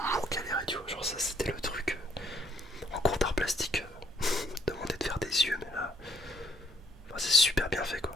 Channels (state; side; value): normal; both; correlation 0.65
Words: galéré, tu vois. Genre ça c'était le truc. En cours d'art plastique, demander de faire des yeux, mais là. Enfin, c'est super bien fait